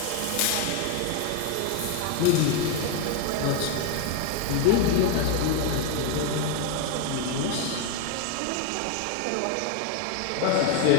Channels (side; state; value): both; different; correlation 0.01